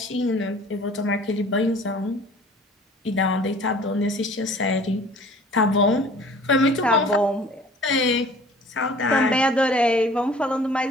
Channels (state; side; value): normal; both; correlation 0.49